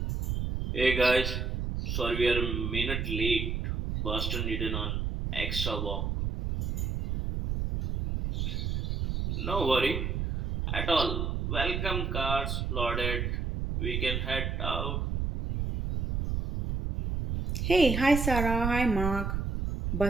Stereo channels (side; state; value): right; noise; rumble, 1 dB below the sound